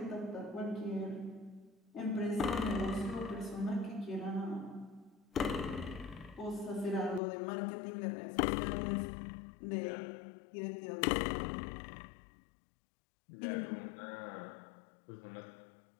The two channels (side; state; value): right; drops out; at 7.2 s